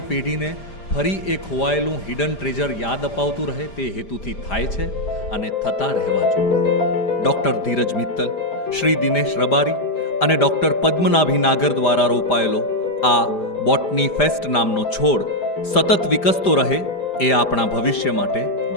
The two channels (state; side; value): late; right; 5.0 ms